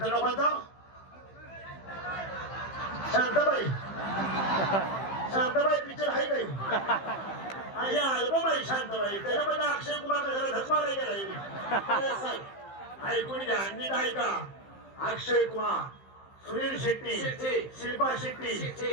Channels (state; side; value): late; right; 15 ms